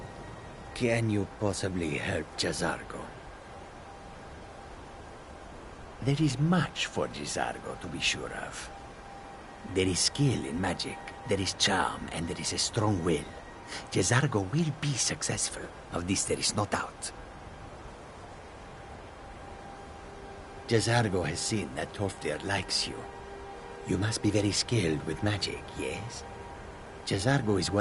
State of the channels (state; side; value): identical; both; correlation 1.00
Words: Can you possibly help Jazargo? There is much for Jazargo to be sure of. There is skill in magic, there is charm, and there is a strong will. Jazargo will be successful. Of this there is no doubt. Jazargo has seen that Tolfdir likes you. You must be very skilled with magic, yes? Jazargo is